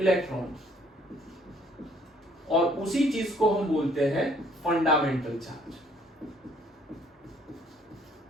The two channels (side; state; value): both; normal; correlation 0.62